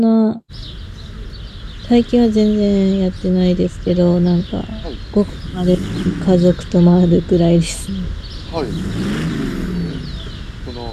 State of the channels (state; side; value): identical; both; correlation 1.00